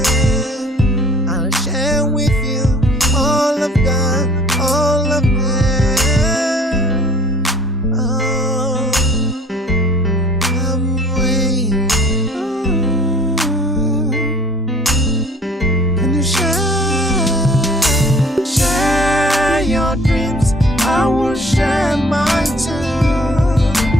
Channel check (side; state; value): both; normal; correlation 0.53